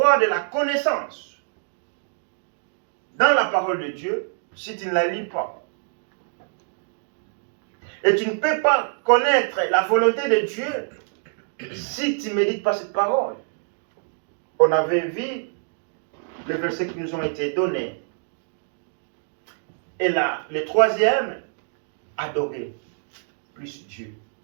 de la connaissance dans la parole de Dieu si tu ne la lis pas. Et tu ne peux pas connaître la volonté de Dieu si tu ne médites pas cette parole. On avait vu les versets qui nous ont été donnés. Et là, le troisième, adorer plus Dieu.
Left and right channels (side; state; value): left; silent; digital silence